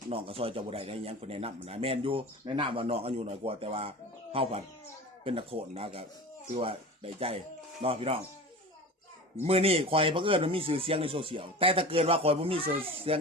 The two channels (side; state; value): both; normal; correlation 0.34